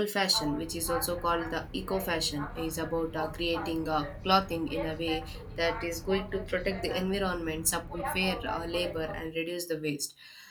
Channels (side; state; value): both; identical; correlation 1.00